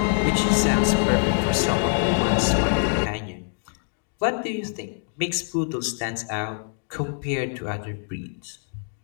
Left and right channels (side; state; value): right; silent; 59 dB below the other